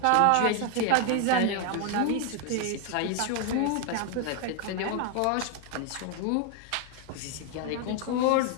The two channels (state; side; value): different; both; correlation 0.01